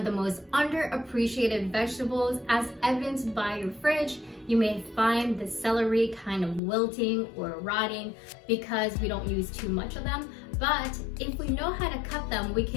the most underappreciated vegetables, as evidenced by your fridge. You may find the celery kind of wilting or rotting because we don't use too much of them. But if we know how to cut them, we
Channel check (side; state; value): right; drops out; at 6.6 s